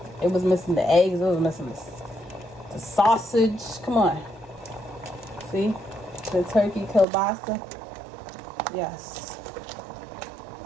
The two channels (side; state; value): left; drops out; at 7.1 s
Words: It was missing the eggs. It was missing the sausage. Come on. See? The turkey kielbasa. Yes.